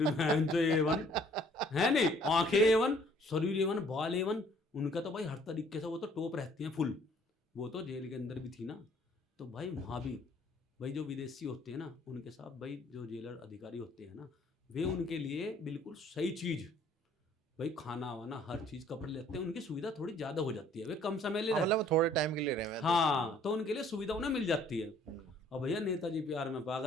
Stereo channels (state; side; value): normal; both; correlation 0.59